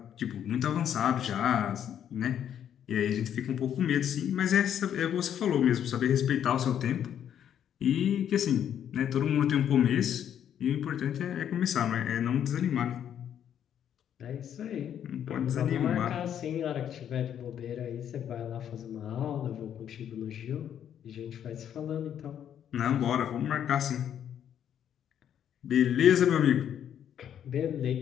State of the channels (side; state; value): right; quieter; 9.5 dB